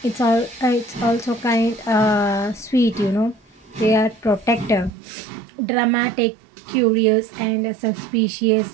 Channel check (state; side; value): drops out; left; at 4.9 s